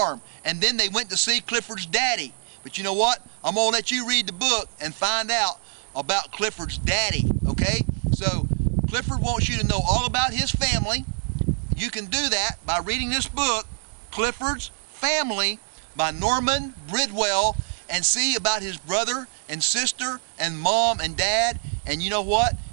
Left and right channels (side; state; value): left; silent; digital silence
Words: And then they went to see Clifford's daddy. But you know what? I'm going to let you read the book and find out about Clifford's daddy, okay? So Clifford wants you to know all about his family. You can do that by reading this book, Clifford's Family, by Norman Bridwell, and see about his brother and sister and mom and dad. And you know what?